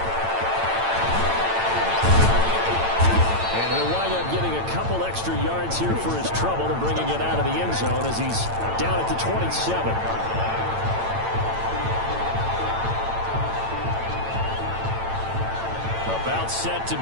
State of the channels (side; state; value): left; late; 8.9 ms